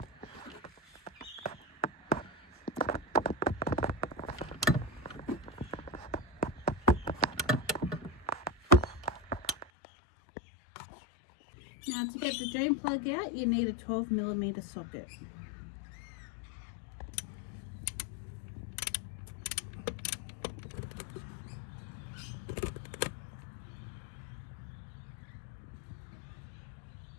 Now to get the drain plug out, you need a 12mm socket.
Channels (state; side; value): drops out; right; at 9.7 s